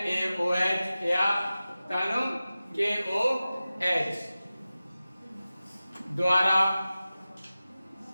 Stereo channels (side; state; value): both; inverted; correlation -0.95